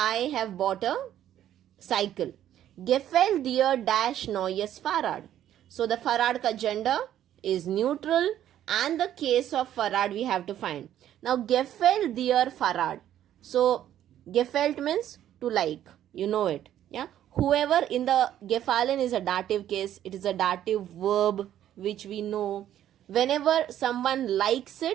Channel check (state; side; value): quieter; left; 11.4 dB